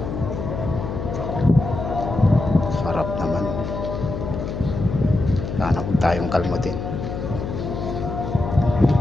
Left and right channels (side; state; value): left; noise; hum, 5 dB below the sound